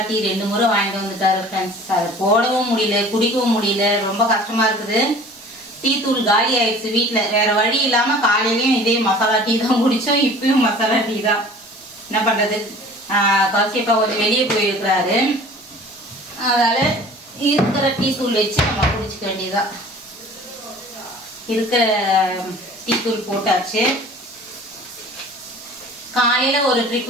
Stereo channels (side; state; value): both; normal; correlation 0.46